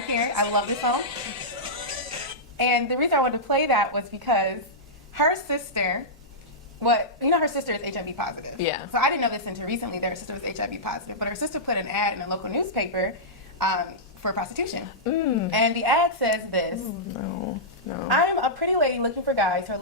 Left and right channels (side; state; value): right; noise; rumble, 30 dB below the sound